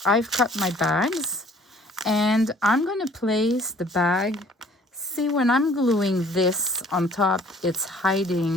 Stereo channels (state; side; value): normal; both; correlation 0.55